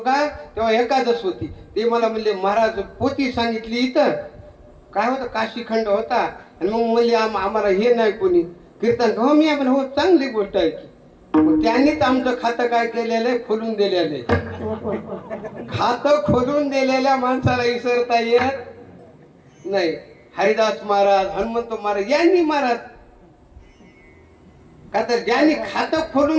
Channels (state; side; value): identical; both; correlation 1.00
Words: तेव्हा एकादश होती. ते मला म्हणले महाराज पोथी सांगितली इथं काय होतं काशीखंड होता. आणि मग म्हणले आम्हाला हे नाही कोणी कीर्तन. हो मी आपण हो चांगली गोष्ट आहे की. मग त्यांनीच आमचं खातं काय केलेलं आहे खोलून दिलेलं आहे. खातं खोलून दिलेल्या माणसाला विसरता येत नाही. हरिदास महाराज हनुमंत महाराज यांनी महाराज का तर ज्यांनी खातं